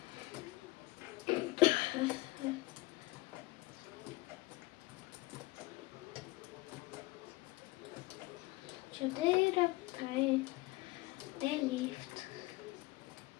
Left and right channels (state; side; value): quieter; right; 21.1 dB